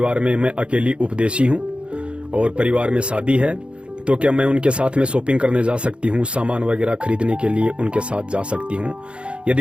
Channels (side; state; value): left; late; 0.057 ms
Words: में मैं अकेली उपदेशी हूँ और परिवार में शादी है, तो क्या मैं उनके साथ में शॉपिंग करने जा सकती हूँ, सामान वगैरह खरीदने के लिए उनके साथ जा सकती हूँ।